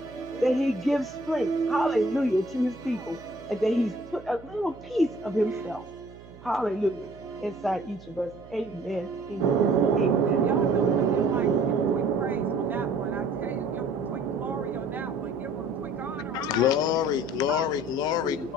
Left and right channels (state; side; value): noise; right; hum, 20 dB below the sound